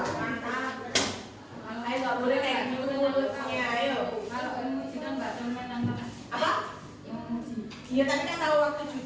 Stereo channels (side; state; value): both; identical; correlation 1.00